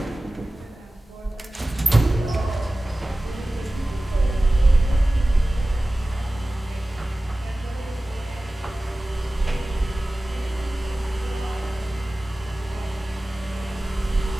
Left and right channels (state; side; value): normal; both; correlation 0.97